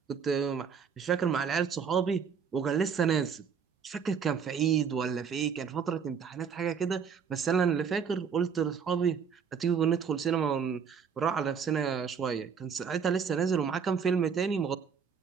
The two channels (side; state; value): left; quieter; 6.6 dB